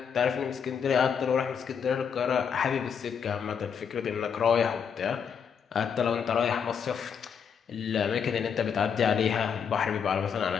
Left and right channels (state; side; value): quieter; right; 7.0 dB